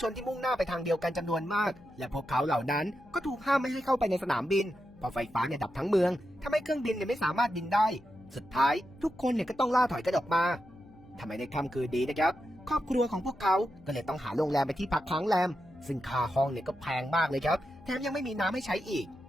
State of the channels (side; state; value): left; noise; hum, 24 dB below the sound